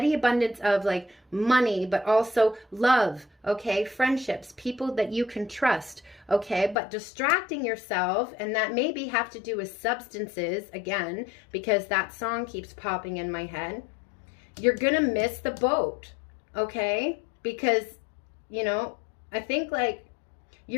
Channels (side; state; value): right; drops out; at 6.8 s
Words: abundance of like money, but also love, okay, friendships, people that you can trust, okay, but distracting yourself, and that maybe have to do with substances, again, because that song keeps popping in my head, you're gonna miss the boat, okay, because, you know, I think like